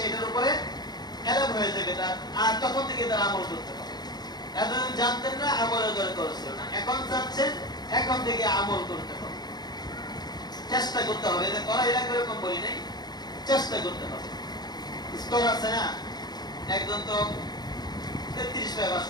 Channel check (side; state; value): right; late; 0.20 ms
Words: উপরে এলাম হয়ে যাবে তার, আর তখন থেকে তার আমল করতে হবে। এতদিন জানতেন না, আমলের দরকার ছিল না, এখন জানছেন, এখন থেকে আমল করতে হবে, চেষ্টা করতে হবে। এটা করা এলাকা এরকম বলি নাই, চেষ্টা করতে হবে। স্তর আছে না, একজন তো 33 পায় পাস